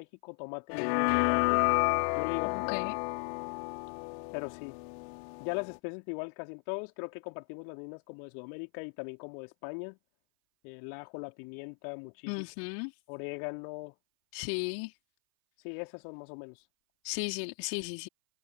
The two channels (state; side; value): silent; right; 54 dB below the other